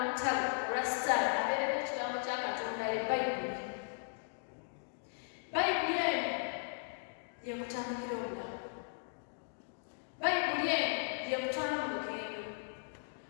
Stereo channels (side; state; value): right; silent; digital silence